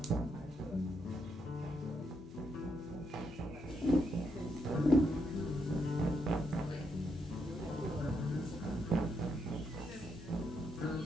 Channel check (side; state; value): both; normal; correlation 0.79